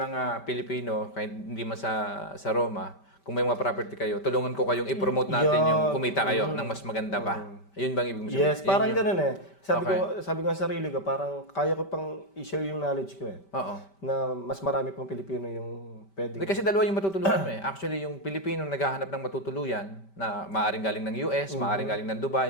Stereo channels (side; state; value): right; late; 5.1 ms